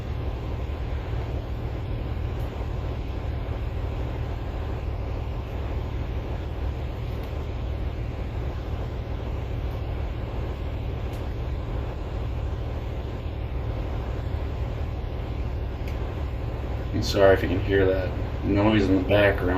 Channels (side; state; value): both; identical; correlation 1.00